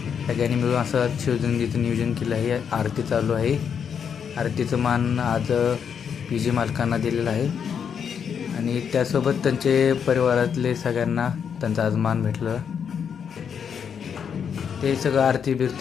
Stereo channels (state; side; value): quieter; right; 7.3 dB